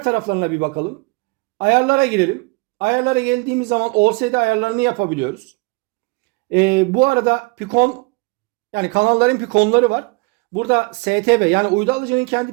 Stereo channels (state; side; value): quieter; left; 27.4 dB